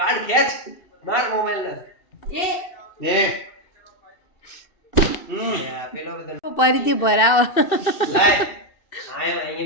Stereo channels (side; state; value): right; late; 2.7 ms